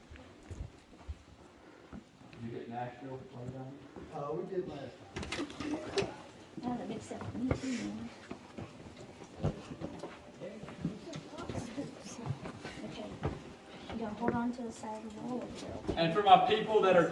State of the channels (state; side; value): identical; both; correlation 1.00